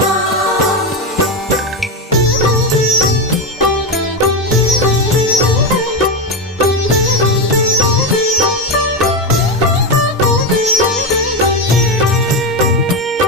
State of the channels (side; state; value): both; normal; correlation 0.11